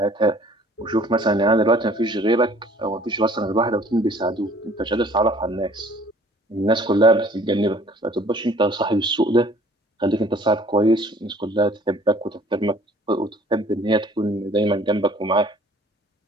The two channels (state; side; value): normal; both; correlation 0.54